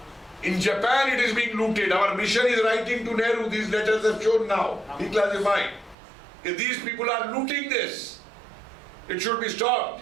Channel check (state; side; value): drops out; left; at 6.0 s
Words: In Japan it is being looted. Our mission is writing to Nehru. These letters are shown now, declassified. If these people are looting this, it should be stopped.